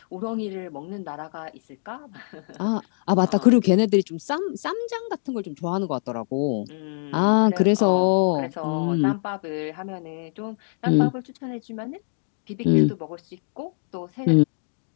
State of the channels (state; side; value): silent; right; digital silence